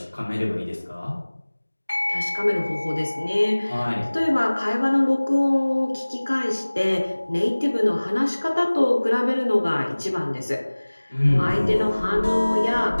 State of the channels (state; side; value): inverted; both; correlation -1.00